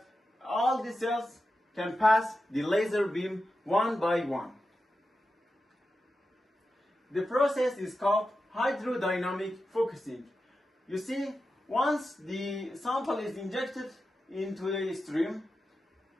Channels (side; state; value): both; normal; correlation 0.91